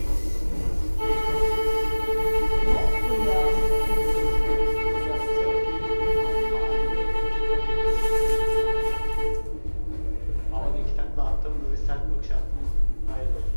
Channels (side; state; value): both; inverted; correlation -1.00